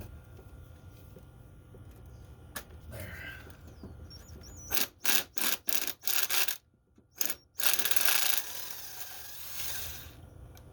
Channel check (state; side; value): identical; both; correlation 1.00